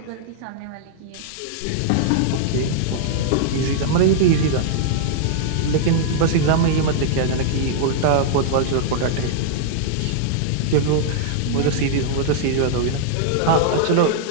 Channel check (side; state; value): both; different; correlation -0.01